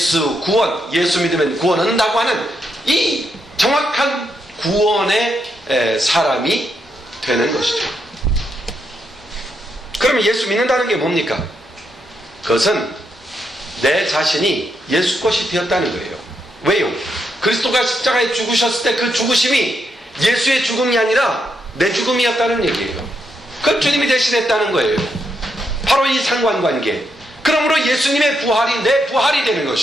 믿으면 구원 얻는다고 하는 이 정확한 구원의 사람이 되는 것이죠. 그러면 예수 믿는다는 게 뭡니까? 그것은 내 자신이 예수 것이 되었다는 거예요. 왜요? 그리스도가 십자가에 죽으셨을 때 그 죽으심이 예수의 죽음이 아니라 내 죽음이었다는 얘기예요. 그 주님이 대신했다는 거예요. 바로 이 상관관계. 그러므로 예수님의 부활이 내 부활이 되는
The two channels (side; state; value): both; normal; correlation 0.80